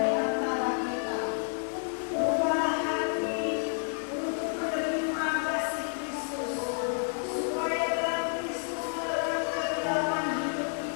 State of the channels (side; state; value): right; silent; 58 dB below the other